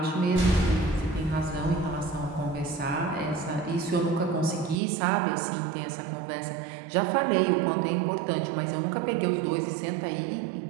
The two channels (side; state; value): left; drops out; at 4.8 s